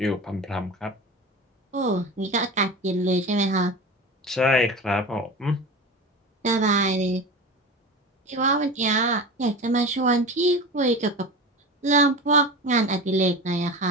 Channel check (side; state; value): both; normal; correlation 0.29